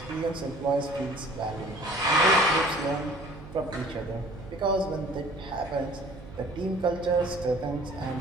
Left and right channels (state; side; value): noise; right; hum, 16 dB below the sound